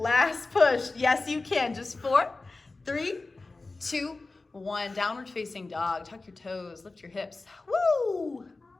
push, yes you can, just 4, 3, 2, 1, downward facing dog, tuck your toes, lift your hips, woo!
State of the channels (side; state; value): right; quieter; 3.5 dB